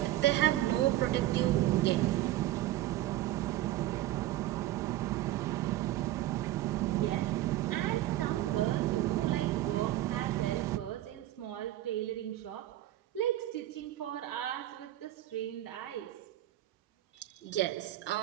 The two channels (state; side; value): quieter; left; 14.7 dB